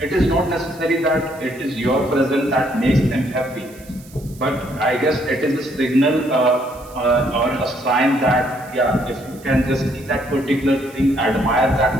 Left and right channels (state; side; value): noise; right; hiss, 23 dB below the sound